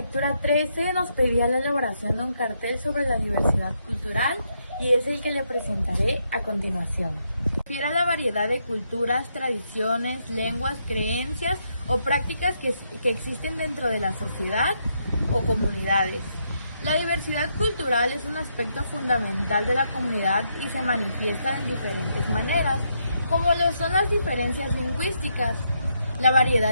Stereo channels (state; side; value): inverted; both; correlation -0.78